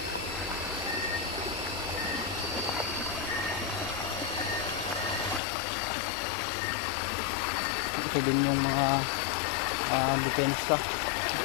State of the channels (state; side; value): drops out; right; at 5.4 s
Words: Ito din yung mga depensa.